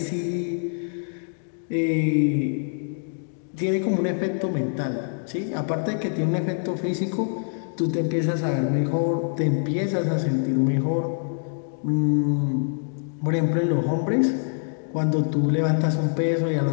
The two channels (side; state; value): right; silent; digital silence